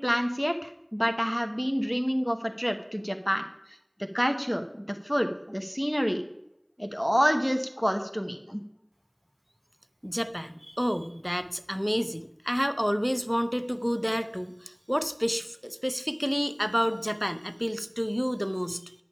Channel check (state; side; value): identical; both; correlation 1.00